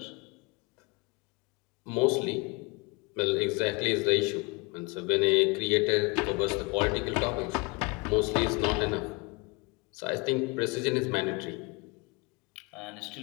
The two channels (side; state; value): right; quieter; 27.7 dB